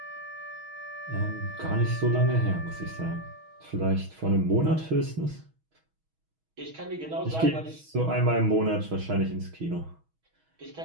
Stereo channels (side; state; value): left; late; 6.3 ms